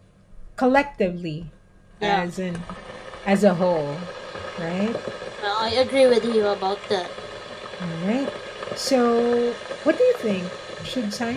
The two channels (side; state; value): both; identical; correlation 1.00